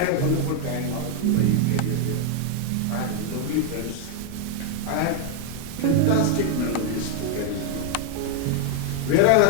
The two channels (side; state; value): both; different; correlation 0.00